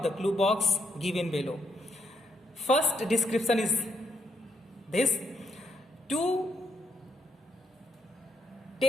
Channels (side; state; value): both; normal; correlation 0.77